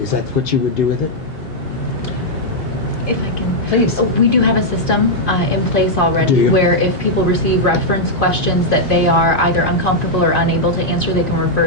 that what you would do with it? If I can. Please. We do have a system in place Do already you? where if people receive reference questions that they are either uncomfortable or unable to answer, they can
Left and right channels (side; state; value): both; normal; correlation -0.04